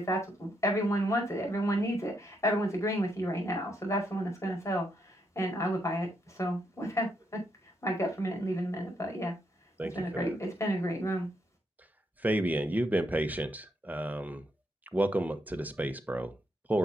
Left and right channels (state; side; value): normal; both; correlation 0.78